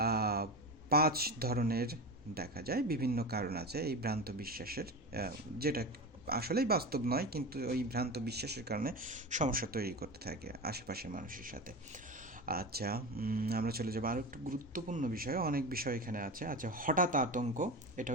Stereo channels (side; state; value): both; normal; correlation 0.25